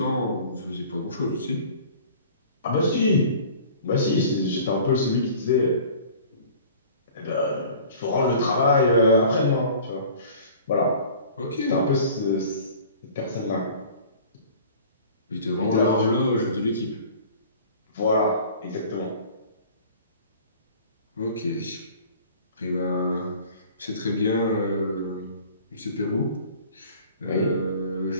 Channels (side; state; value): both; inverted; correlation -0.46